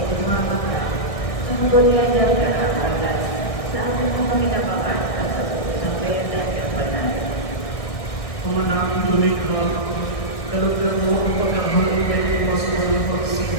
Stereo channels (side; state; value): right; late; 1.6 ms